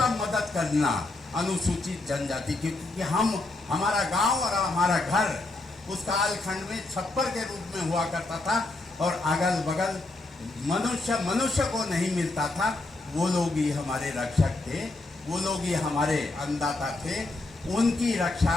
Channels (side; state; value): right; quieter; 3.0 dB